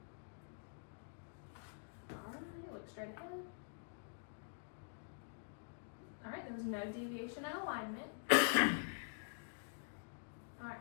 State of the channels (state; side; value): silent; right; digital silence